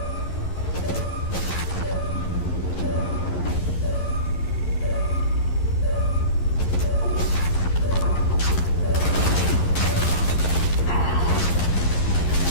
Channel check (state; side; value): late; right; 11 ms